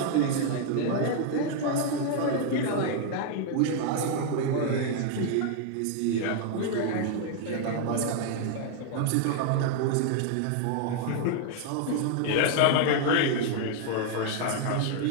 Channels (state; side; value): different; both; correlation 0.00